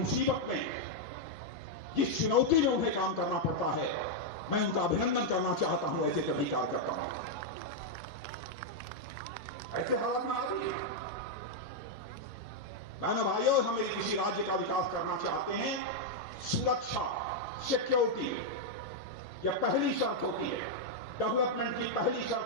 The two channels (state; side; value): normal; both; correlation -0.02